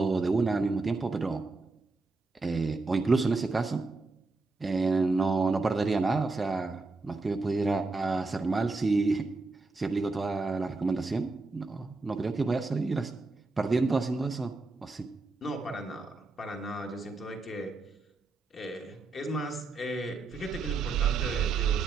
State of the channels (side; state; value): left; quieter; 3.6 dB